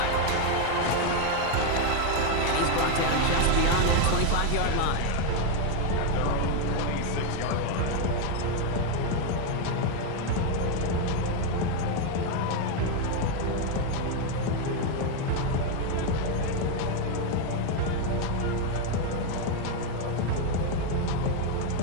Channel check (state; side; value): different; both; correlation 0.02